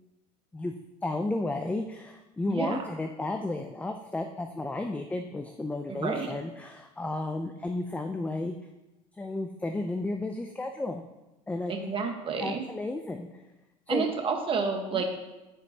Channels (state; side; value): normal; both; correlation 0.69